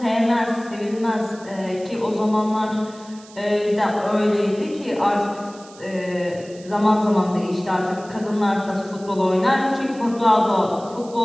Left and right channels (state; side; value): noise; right; hiss, 22 dB below the sound